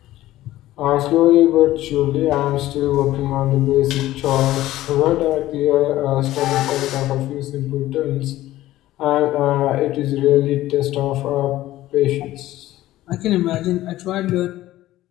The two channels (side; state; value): right; quieter; 15.3 dB